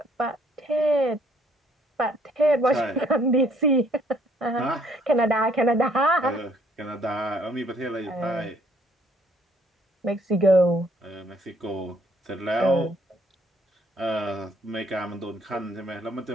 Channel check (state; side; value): normal; both; correlation 0.64